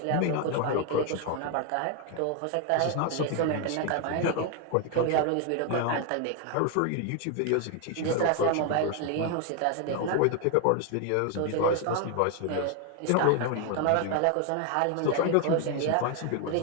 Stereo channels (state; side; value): different; both; correlation 0.01